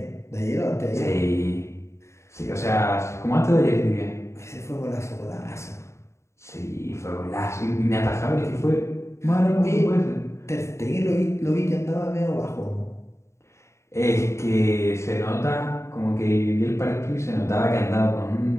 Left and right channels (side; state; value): right; late; 0.14 ms